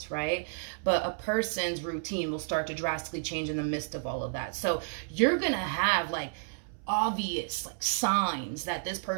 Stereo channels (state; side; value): silent; left; 57 dB below the other